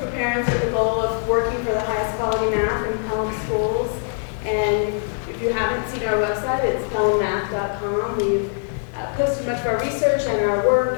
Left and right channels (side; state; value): right; silent; digital silence